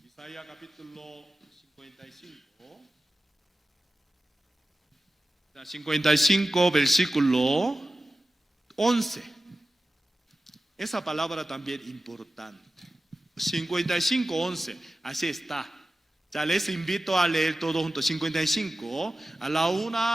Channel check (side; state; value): both; normal; correlation 0.94